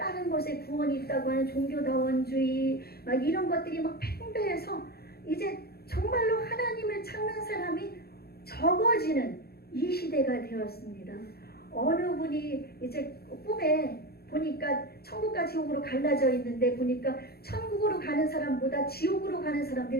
곳에 구원이 있다고 하는 종교다원주의, 막 이런 것들이 막 팽배해서 이제 정말로 하나님을 찾는 사람이 적어지는 이 시대가 되었습니다. 어느 분이 이제 꿈에 보니까 천국과 지옥으로 갈라져 있는데, 보니까 천국으로 가는 사람보다 지옥으로 가는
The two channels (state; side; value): late; right; 0.46 ms